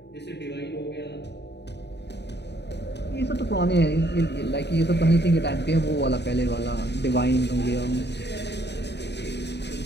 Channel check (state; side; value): late; right; 0.50 ms